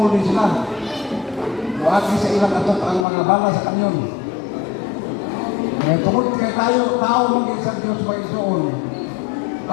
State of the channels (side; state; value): right; drops out; at 3.1 s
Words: din sila. Buati sa ilang atot ang mga bala sa kanyon. Kaya tungkol kay tayo, tao magiging sa Diyos mag-isoon.